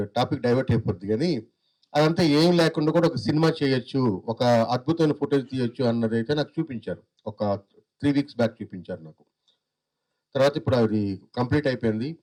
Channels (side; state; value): both; identical; correlation 1.00